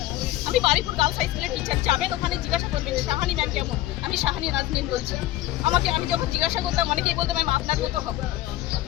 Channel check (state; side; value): quieter; right; 15.2 dB